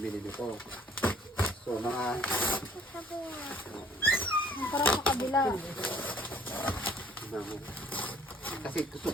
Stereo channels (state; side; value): normal; both; correlation 0.58